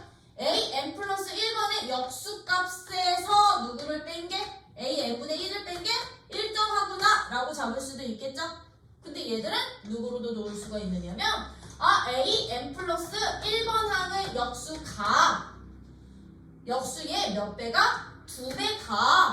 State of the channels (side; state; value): both; identical; correlation 1.00